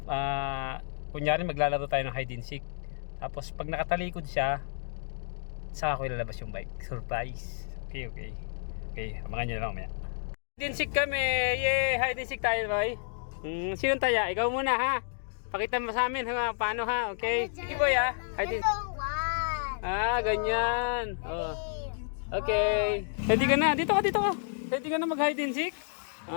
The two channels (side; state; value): right; silent; digital silence